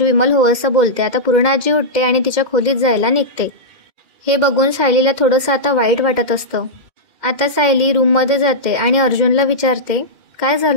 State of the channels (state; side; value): late; left; 2.1 ms